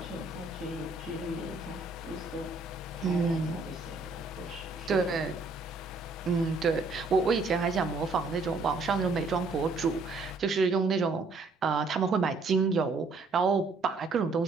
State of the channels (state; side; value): quieter; left; 3.7 dB